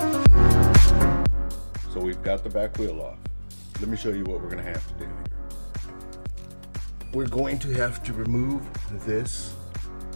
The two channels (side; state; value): both; inverted; correlation -1.00